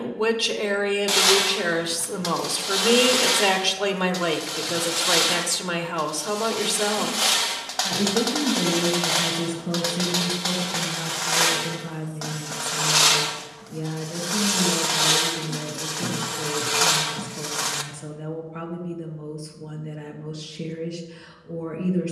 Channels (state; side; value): identical; both; correlation 1.00